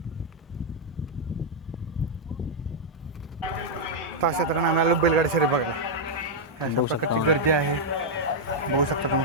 अशा तऱ्हेने आम्ही आलो बैलगाडी शर्यत बघायला. अशा प्रकारची गर्दी आहे, बघू शकता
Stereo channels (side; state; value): both; normal; correlation -0.03